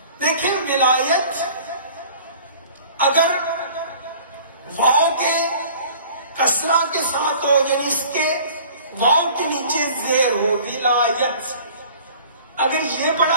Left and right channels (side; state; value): both; inverted; correlation -0.47